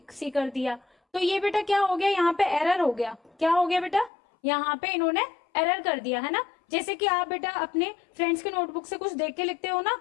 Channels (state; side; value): drops out; right; at 4.1 s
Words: सी कर दिया। तो ये बेटा क्या हो गया, यहाँ पे एरर हो गया। क्या हो गया बेटा, यहाँ पे इन्होंने एरर कर दिया, है ना। जैसे कि आप बेटा अपने फ्रेंड्स के नोटबुक से कुछ देख के लिखते हो ना,